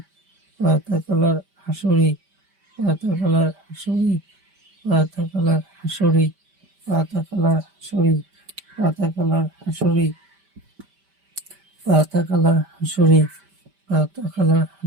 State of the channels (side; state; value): left; late; 5.1 ms